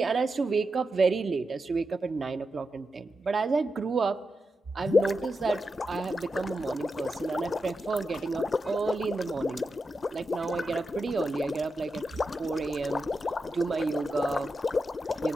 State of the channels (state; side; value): normal; both; correlation 0.88